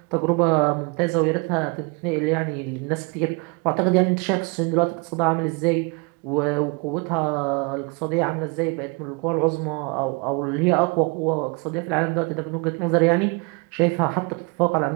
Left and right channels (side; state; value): left; quieter; 31.2 dB